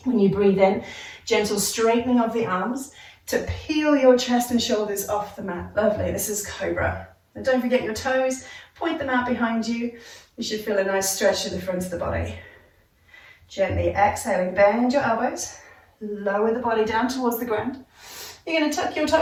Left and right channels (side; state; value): both; identical; correlation 1.00